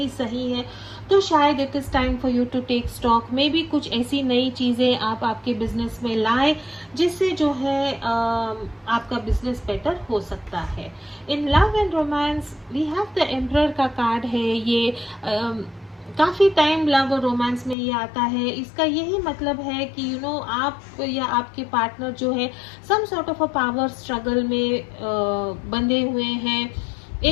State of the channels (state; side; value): drops out; right; at 17.8 s